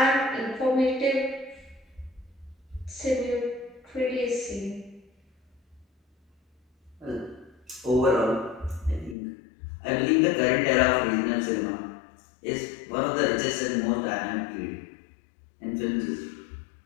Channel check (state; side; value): drops out; right; at 9.2 s